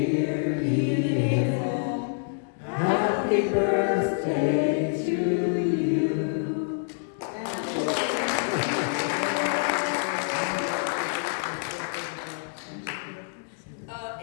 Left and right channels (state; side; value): silent; right; digital silence